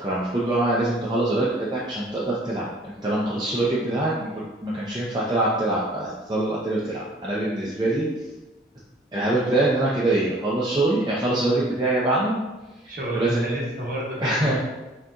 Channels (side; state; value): both; normal; correlation 0.54